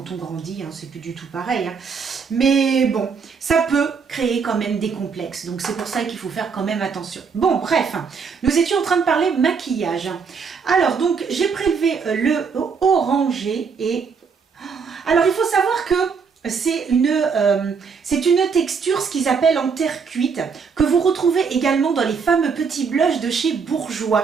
on grandit, hein, c'est plus du tout pareil. Hein. Mais bon, ça peut créer quand même des complexes, donc c'est pour ça qu'il faut faire quand même attention. Bon, bref, nous étions en train de parler maquillage. Alors donc, j'ai prélevé le orangé, et... Alors il faut savoir que c'est une texture, ce qu'ils appellent en terre cuite, que vous retrouvez également dans les fameux petits blushs de chez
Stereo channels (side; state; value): left; quieter; 5.7 dB